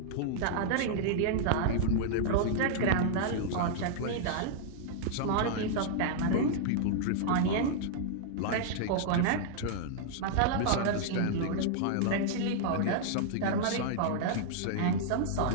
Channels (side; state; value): both; different; correlation -0.01